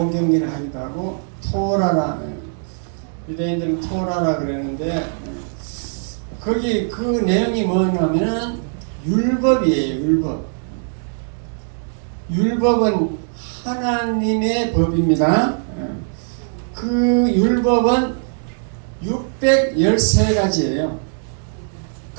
하기도 하고 토라라, 유대인들은 토라라 그러는데 거기 그 내용이 뭐냐면은 율법이에요. 율법은 하나님의 법입니다. 그 율법은 613가지예요.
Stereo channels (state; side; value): silent; left; digital silence